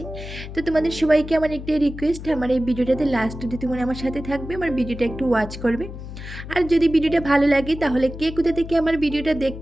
তো তোমাদের সবাইকে আমার একটা রিকোয়েস্ট, আমার এই ভিডিওটাতে লাস্ট অবধি তোমরা আমার সাথে থাকবে, আমার ভিডিওটা একটু ওয়াচ করবে। আর যদি ভিডিওটা ভালো লাগে তাহলে কে কোথা থেকে আমার ভিডিওটা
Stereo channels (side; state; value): left; noise; hum, 11 dB below the sound